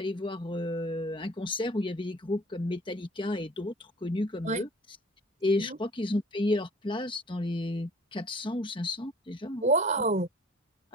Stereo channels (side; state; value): both; normal; correlation 0.50